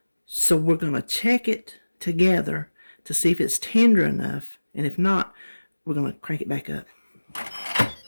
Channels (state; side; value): inverted; both; correlation -1.00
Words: So we're going to check it together to see if it's tender enough. And if not, we're going to crank it back up.